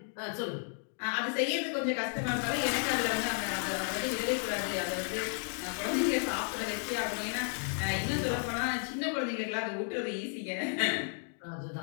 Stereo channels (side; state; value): right; silent; 56 dB below the other